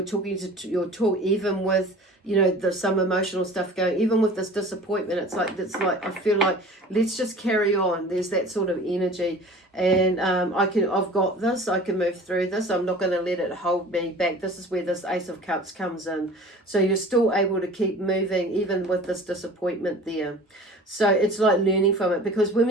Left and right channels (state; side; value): normal; both; correlation 0.43